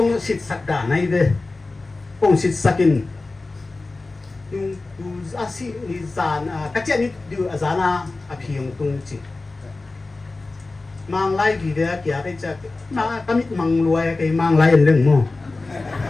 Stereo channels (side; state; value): right; quieter; 3.4 dB